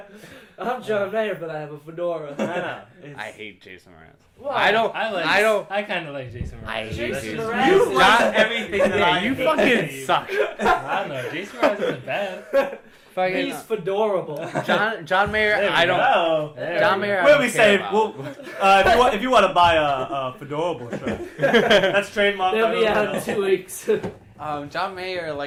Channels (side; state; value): both; identical; correlation 1.00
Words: Like, I'm John Mayer, but I have a fedora. I know. It's- I hate Jason Mraz. Why? I don't. I kind of like Jason Mraz. I hate Jason Jason Mraz. Mraz. You John- like everything that Yeah, I you hate. fucking suck. I don't know. Jason Mraz isn't bad. Fucking He's fedorable. John Mayer. There we I don't. Oh. There John we Mayer. I What do don't we care say? about. Well, if you want to buy a fedorable shirt, that's trademark. They'll be out in 2 weeks. John Mayer,